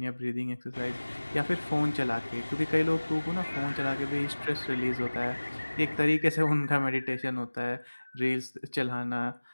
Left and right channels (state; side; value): inverted; both; correlation -1.00